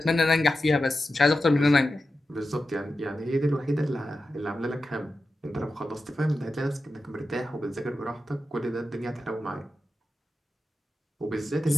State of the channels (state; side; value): normal; both; correlation 0.91